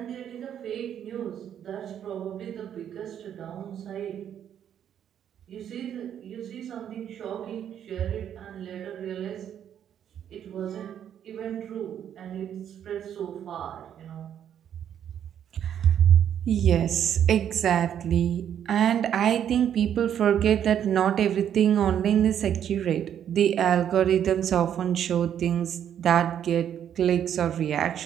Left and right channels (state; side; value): quieter; left; 9.5 dB